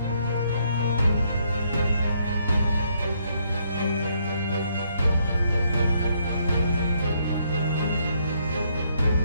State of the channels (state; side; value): inverted; both; correlation -0.72